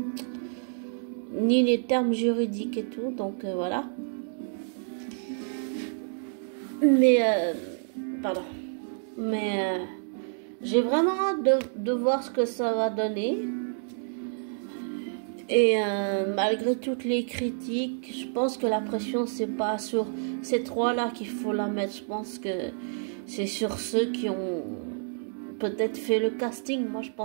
ni les termes juridiques et tout, donc voilà. Mais, pardon. Mais j'ai vraiment hâte de voir ce que ça va donner. Et malgré toutes les critiques, je pense que la pression, c'est pas sur ces trois-là qu'il faut la mettre. Je pense que c'est sur ceux qui ont peut-être fait le casting. Moi, je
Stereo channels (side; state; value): left; silent; digital silence